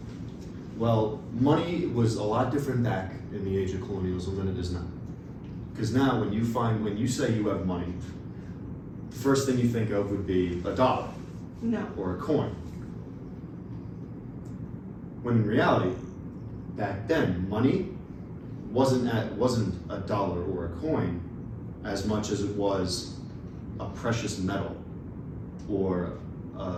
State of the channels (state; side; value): identical; both; correlation 1.00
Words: Well, money was a lot different back in the age of colonialism than it is now. Because now when you say you have money, the first thing you think of would be a dollar No. or a coin. When in reality, back then, money wasn't a dollar or a coin as much as it was a precious metal or